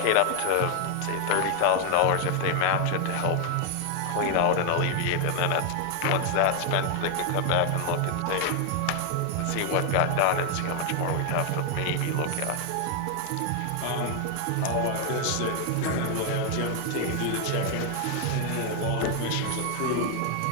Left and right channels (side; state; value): both; different; correlation 0.00